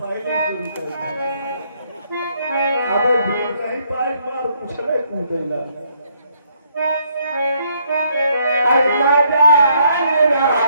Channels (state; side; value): inverted; both; correlation -0.70